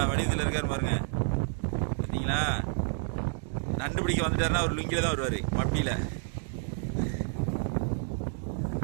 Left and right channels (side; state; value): left; silent; digital silence